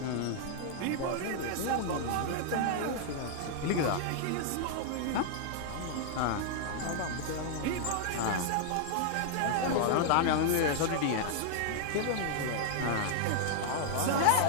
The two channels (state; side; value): different; both; correlation -0.01